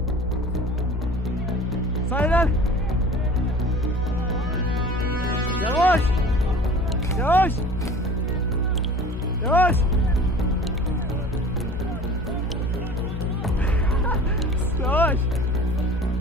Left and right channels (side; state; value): both; normal; correlation 0.43